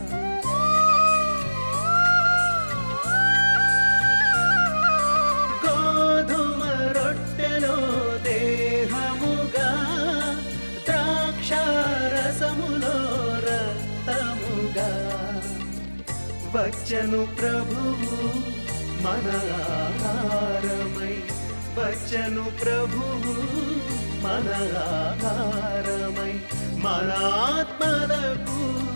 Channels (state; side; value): inverted; both; correlation -1.00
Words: గోధుమ రొట్టెలో దేహముగా, ద్రాక్ష రసములో రక్తముగా వచ్చను ప్రభువు మన ఆహారమై, వచ్చను ప్రభువు మన ఆహారమై, మన ఆత్మలకు